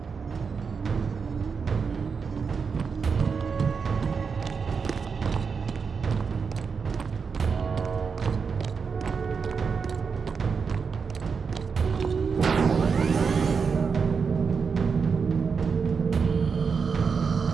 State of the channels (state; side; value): quieter; left; 5.6 dB